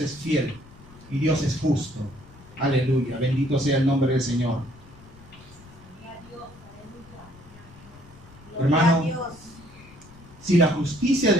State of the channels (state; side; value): noise; left; rumble, 22 dB below the sound